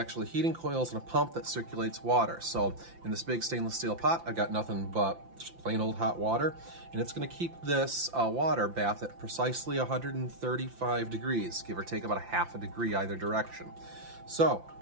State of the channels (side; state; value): left; late; 5.8 ms